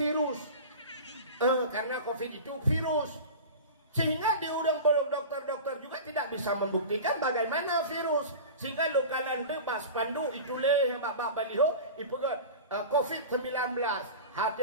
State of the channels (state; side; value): inverted; both; correlation -0.32